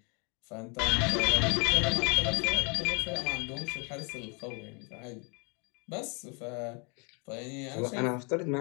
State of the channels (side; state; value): right; quieter; 33.7 dB